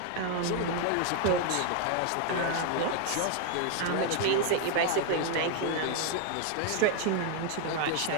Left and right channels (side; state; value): both; different; correlation 0.00